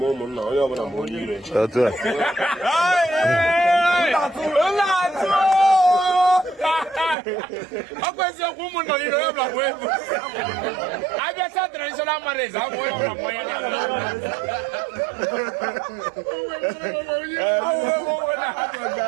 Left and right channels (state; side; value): drops out; left; at 7.2 s